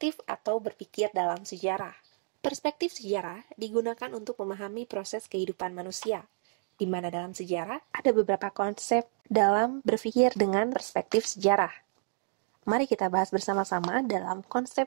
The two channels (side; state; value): left; silent; digital silence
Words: atau berpikir dalam sejarah. Perspektif sejarah digunakan untuk memahami proses kehidupan manusia, di mana dalam sejarah ada beberapa konsep dalam berpikir dengan perspektif sejarah. Mari kita bahas bersama-sama dalam konsep